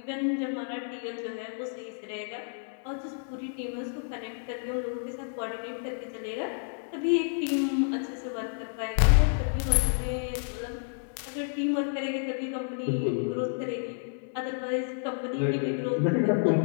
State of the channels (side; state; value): right; silent; 58 dB below the other